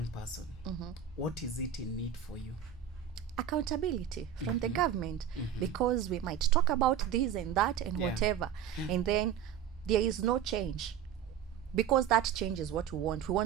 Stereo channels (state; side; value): quieter; left; 9.1 dB